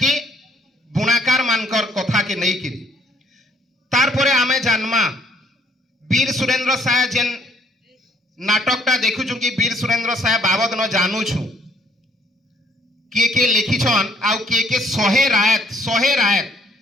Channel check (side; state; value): both; normal; correlation 0.65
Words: की बुणाकार मानकर कथा के नहीं किरी तार परे आमे जानमा वीर सुरेंद्र साय जेन नाटकटा देखुछु कि वीर सुरेंद्र साय बाबद न जानूछु के लिखिछन आउ के सहे रायत